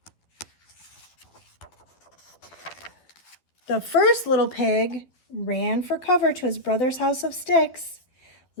The first little pig ran for cover to his brother's house of sticks.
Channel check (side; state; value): right; late; 12 ms